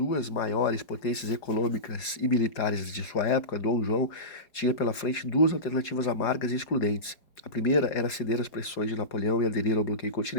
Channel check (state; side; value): late; right; 4.9 ms